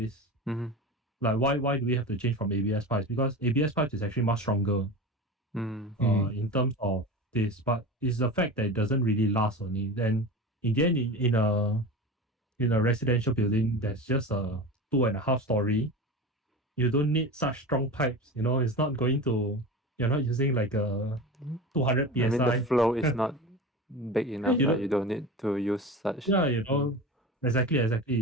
Like why do we have to change from ABS pipes? Because ABS pipes is actually much stronger in terms of this, but it's the fact that it doesn't really last only. Then in the end, in a residential building that's just a 2.5 story, you don't need such strong pipes. It's not going to. You're not using like a 200 psi. I mean, the flow is not big enough. you Like don't, you don't need to use such. yeah,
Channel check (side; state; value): both; normal; correlation 0.29